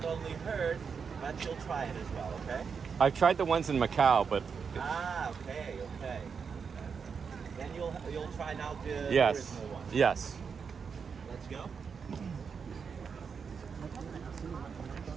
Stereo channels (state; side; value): quieter; left; 6.1 dB